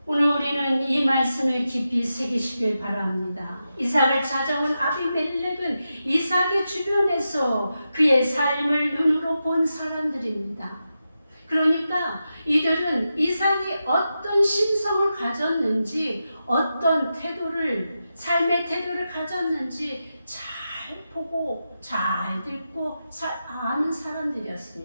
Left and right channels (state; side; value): inverted; both; correlation -0.89